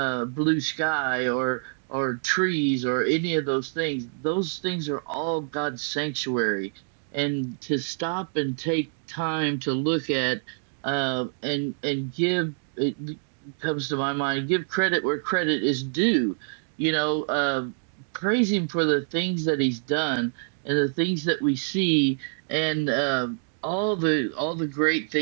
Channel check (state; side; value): silent; left; digital silence